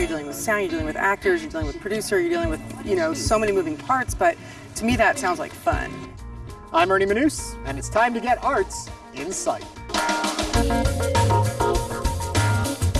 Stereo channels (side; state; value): both; identical; correlation 1.00